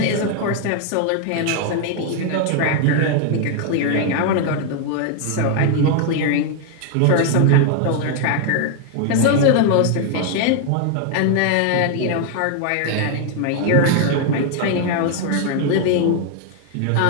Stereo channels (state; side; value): different; both; correlation 0.00